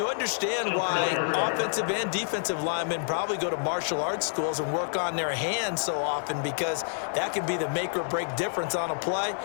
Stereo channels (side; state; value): right; silent; digital silence